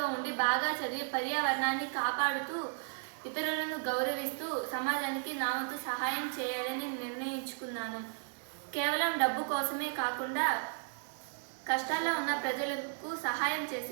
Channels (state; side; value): silent; left; digital silence